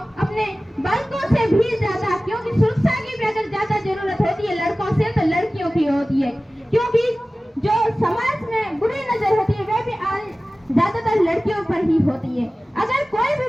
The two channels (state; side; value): normal; both; correlation 0.97